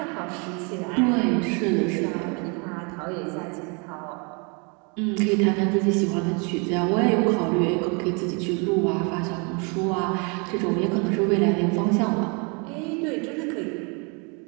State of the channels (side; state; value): left; quieter; 33.2 dB